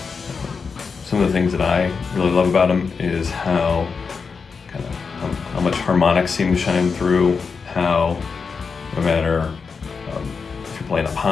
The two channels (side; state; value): right; quieter; 5.3 dB